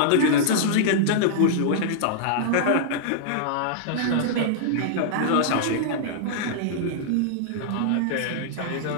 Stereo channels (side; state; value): both; different; correlation -0.01